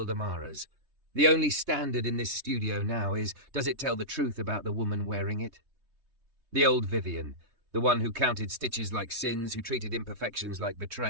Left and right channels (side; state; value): left; late; 3.2 ms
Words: Amara's. "The only standard in this studio now is, does it tell the truth about the woman wearing it?" The old Vivian, the one who counted stitches like sins, who treated imperfections like